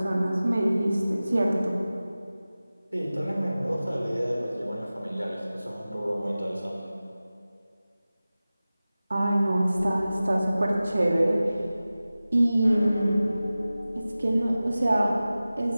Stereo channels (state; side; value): inverted; both; correlation -0.96